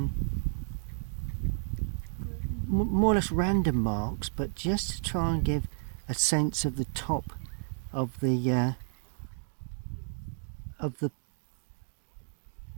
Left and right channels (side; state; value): left; silent; digital silence